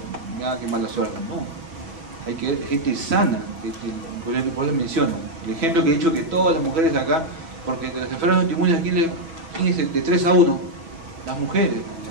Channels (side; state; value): left; late; 6.1 ms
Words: qué mala suerte. No, hay que ver gente sana, por eso menciono. El ejemplo que he dicho, que todas las mujeres acá, porque de las enfermedades autoinmunes aquí ¿quién es el de 3 a 1? Las mujeres.